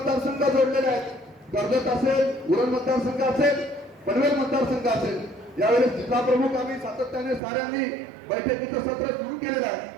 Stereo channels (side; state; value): left; drops out; at 7.4 s